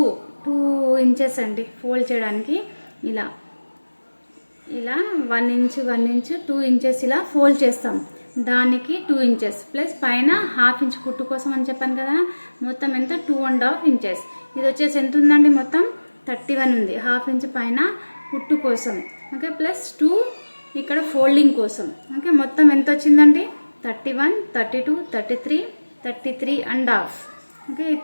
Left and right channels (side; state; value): both; inverted; correlation -1.00